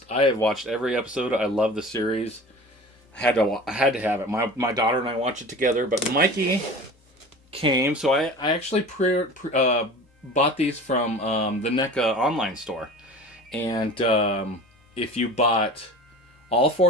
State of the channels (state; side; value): normal; both; correlation 0.38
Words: I have watched every episode. I love the series. I had to have it. My daughter and I watched it together. But Mikey came, so I actually bought these from the NECA online store. And if you bought all